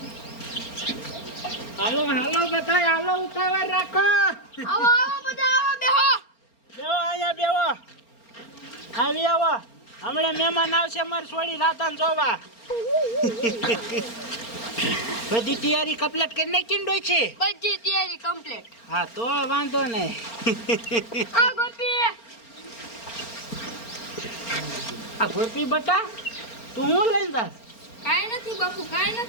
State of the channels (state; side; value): late; right; 4.4 ms